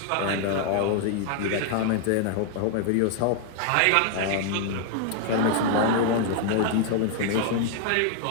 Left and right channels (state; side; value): different; both; correlation 0.00